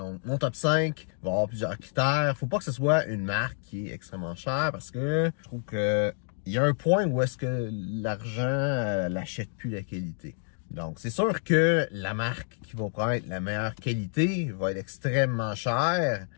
mon top 5 va avoir plusieurs critères. Faut pas que ce soit une marque qui est extrêmement chère parce que je trouve que il y a un point où est-ce que l'argent n'achète plus la qualité. Donc, c'est sûr que la marque qui va prendre la meilleure qualité va être extrêmement chère,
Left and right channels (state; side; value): silent; right; digital silence